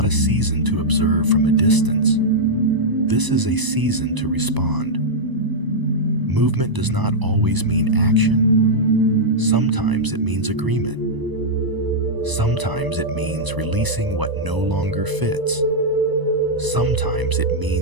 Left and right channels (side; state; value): left; late; 1.0 ms